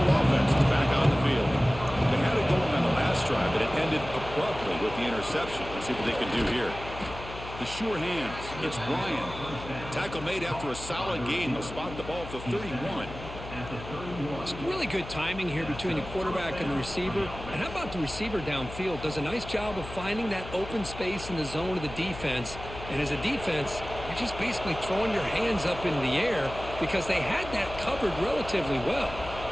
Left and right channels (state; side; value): noise; left; hum, 12 dB below the sound